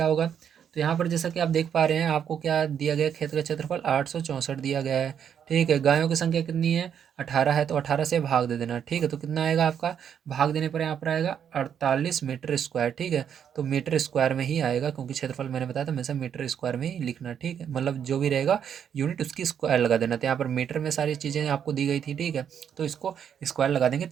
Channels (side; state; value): left; quieter; 8.4 dB